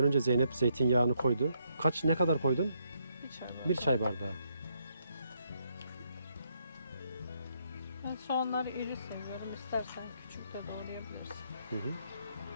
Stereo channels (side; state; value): both; inverted; correlation -0.75